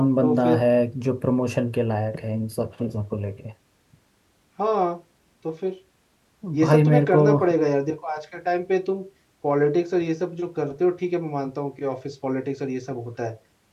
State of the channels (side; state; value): both; identical; correlation 1.00